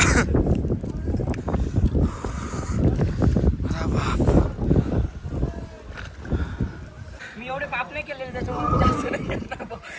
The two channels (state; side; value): identical; both; correlation 1.00